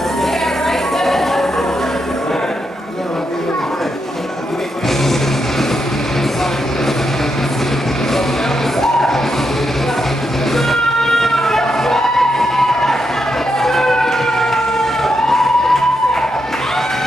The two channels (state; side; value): normal; both; correlation 0.83